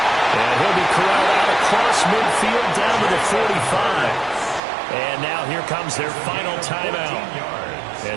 And he'll be corralled out across midfield down to the 45. And now here comes their final timeout,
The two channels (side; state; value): left; drops out; at 4.6 s